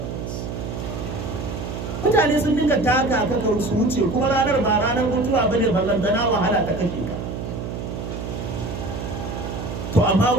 Mutane sun dinga taka kaka su wuce kuma ranar ba ranar mutuwa bane, ballantana wahala ta kake ka. To amma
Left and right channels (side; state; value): right; noise; hum, 6 dB below the sound